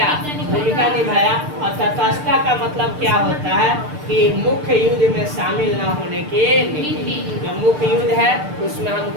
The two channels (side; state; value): left; late; 6.7 ms